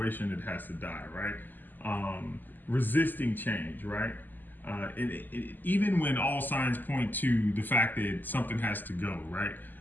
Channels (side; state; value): right; late; 0.088 ms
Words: that has to die, right? Resisting change, right? Even when all signs point to the fact that something has to go, right?